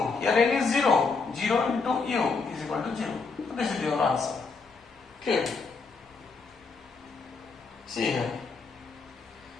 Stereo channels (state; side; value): quieter; right; 4.5 dB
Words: Here n is 0. 0 into u is equal to 0. So this is your answer. Clear? See here.